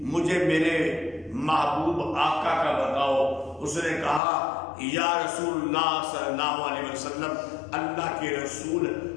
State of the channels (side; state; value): right; drops out; at 4.2 s